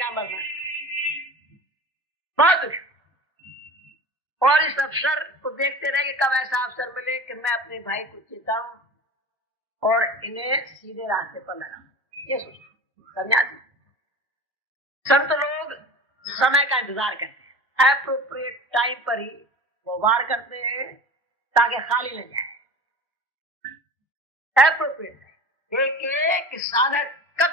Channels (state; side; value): normal; both; correlation 0.36